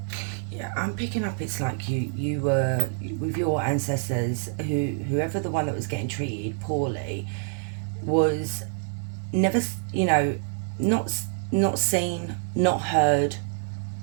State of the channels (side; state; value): left; silent; digital silence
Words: I'm picking up it's like you were with your ancestors, whoever the one that was getting treated poorly was never, you know, not seen, not heard,